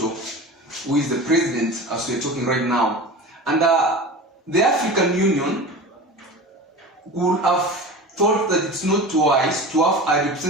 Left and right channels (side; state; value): both; normal; correlation 0.33